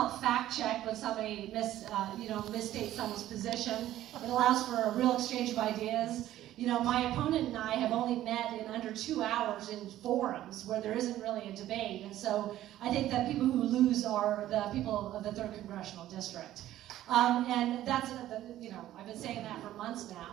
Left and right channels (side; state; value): left; quieter; 13.5 dB